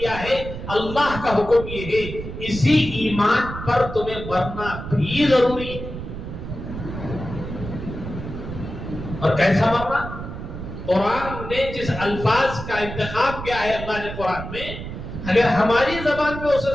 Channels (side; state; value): right; noise; rumble, 9 dB below the sound